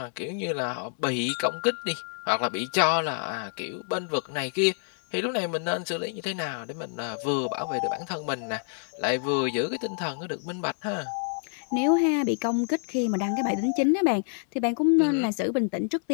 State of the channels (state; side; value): silent; right; 60 dB below the other